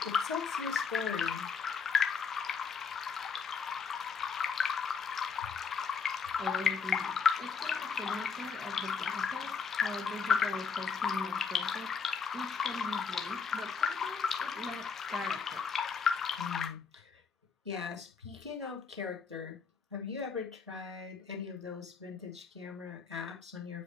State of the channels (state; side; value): quieter; right; 5.8 dB